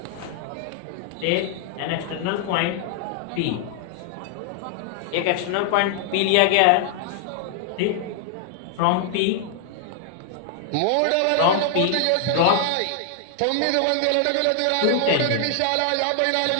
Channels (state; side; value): different; both; correlation 0.00